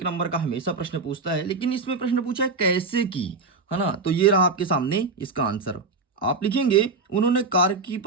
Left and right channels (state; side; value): quieter; left; 4.1 dB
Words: नंबर का हमेशा प्रश्न पूछता है, लेकिन इसमें प्रश्न पूछा है कैसे की, है ना। तो ये रहा आपके सामने इसका आंसर। आप लिखेंगे उन्होंने कार की